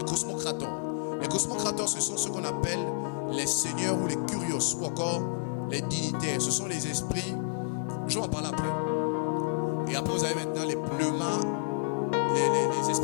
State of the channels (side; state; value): right; silent; digital silence